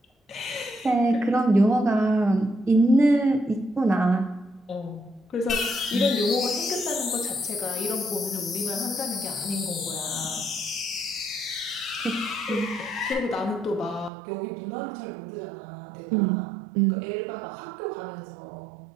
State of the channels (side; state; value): left; drops out; at 14.1 s